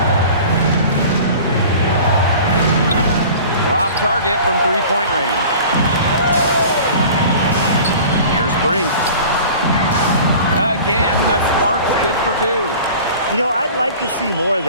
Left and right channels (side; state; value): both; inverted; correlation -0.42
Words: Off target from three-point range. Here's Brink. Again, the spark's good for two. You know, I'd like to see more of